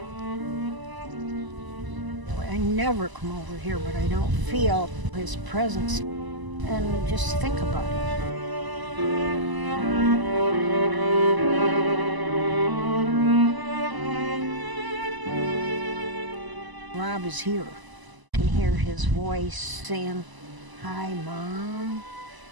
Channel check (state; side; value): late; left; 1.0 ms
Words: I never come over here, but I don't feel his presence. And just think about it. Rob is here. You can hear his voice saying, "Hi, Mom,"